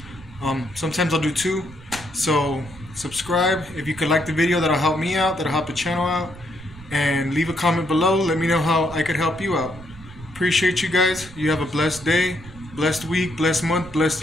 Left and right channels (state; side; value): noise; right; rumble, 18 dB below the sound